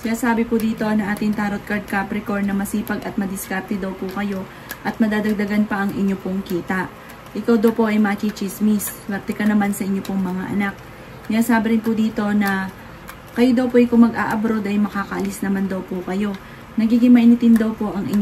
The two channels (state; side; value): identical; both; correlation 1.00